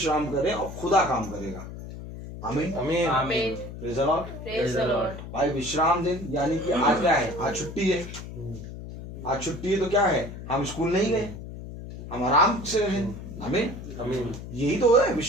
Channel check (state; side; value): noise; left; hum, 11 dB below the sound